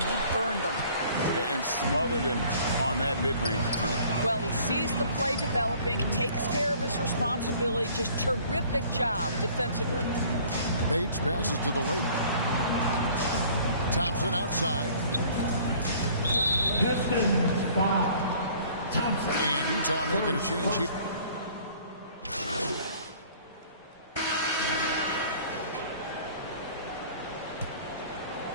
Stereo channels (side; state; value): both; inverted; correlation -0.53